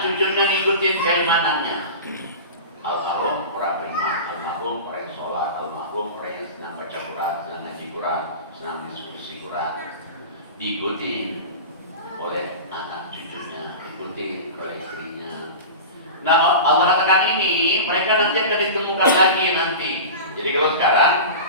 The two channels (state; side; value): inverted; both; correlation -0.31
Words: cucunya ngikutin keimanannya. Almarhum orang beriman, almarhum orang yang sholat, almarhum orang yang senang baca Quran, senang ngaji Quran, senang diskusi Quran. Diikuti oleh anak cucunya, diikuti oleh istrinya. Nah, Allah katakan ini, mereka nanti akan ditemukan lagi nanti. Jadi kalau sekarang